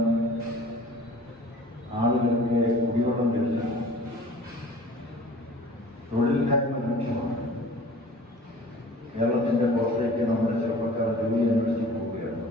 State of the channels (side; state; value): both; normal; correlation 0.45